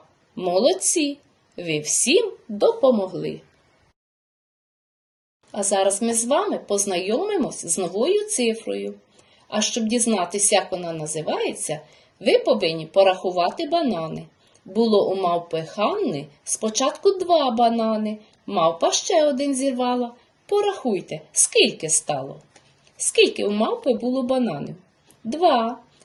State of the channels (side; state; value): both; identical; correlation 1.00